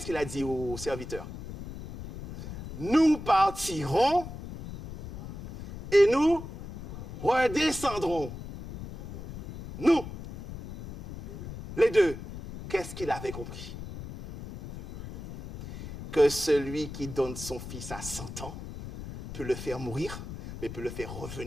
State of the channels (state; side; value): noise; left; rumble, 11 dB below the sound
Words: qu'il a dit au serviteur? Nous partirons et nous redescendrons. Nous, les deux. Qu'est-ce qu'il avait compris? Que celui qui donne son fils à 100 ans peut le faire mourir, mais peut le faire